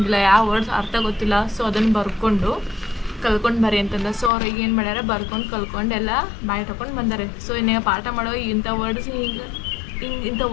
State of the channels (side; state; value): right; drops out; at 4.3 s